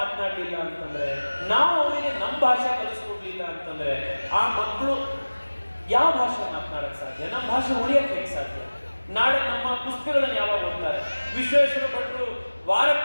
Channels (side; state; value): both; inverted; correlation -1.00